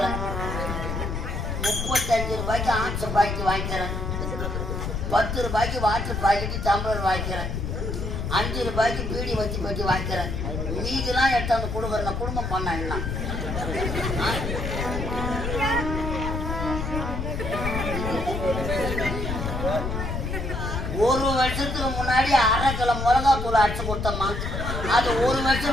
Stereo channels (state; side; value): noise; left; rumble, 3 dB below the sound